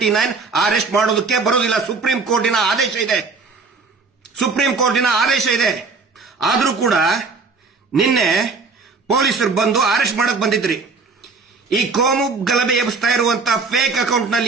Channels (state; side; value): quieter; left; 4.4 dB